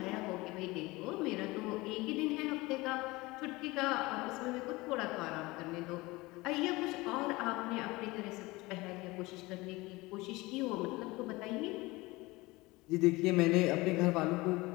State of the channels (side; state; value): right; quieter; 21.8 dB